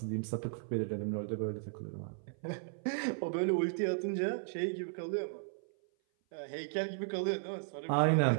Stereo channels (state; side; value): silent; left; 54 dB below the other